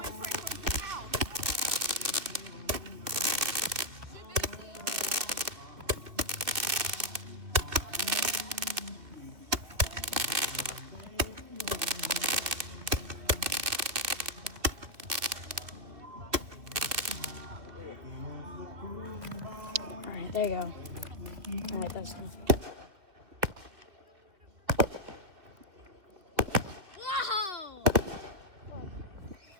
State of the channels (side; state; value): left; late; 2.5 ms